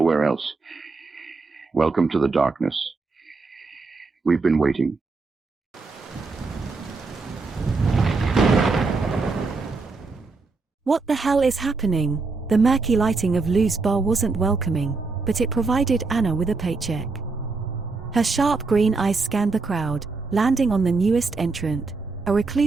else. Welcome to the darkness. We've been waiting. What the hell is happening? The murky lighting of Lou's bar wasn't welcoming, but it provided Anna with a paycheck. Her sharp green eyes scanned the crowd, landing on the newest entrant, a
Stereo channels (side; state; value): left; quieter; 4.0 dB